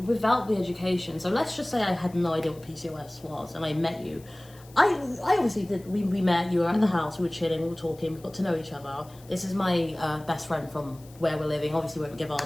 the education, so let's just say I had no idea what PCOS was and I met you. I obviously did, we met, you were at the house, we were chilling, we were talking, we got to know each other. This is my best friend from where we're living, obviously we won't give our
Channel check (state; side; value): noise; left; hiss, 25 dB below the sound